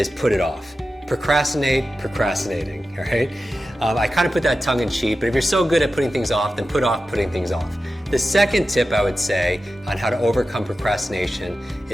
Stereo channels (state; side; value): normal; both; correlation 0.93